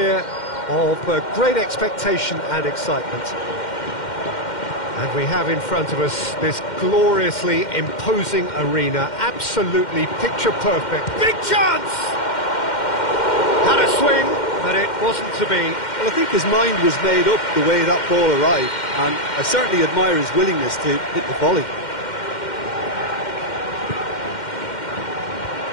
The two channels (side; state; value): right; late; 2.1 ms